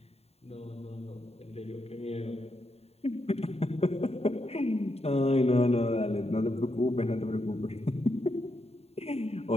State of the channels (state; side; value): late; right; 0.30 ms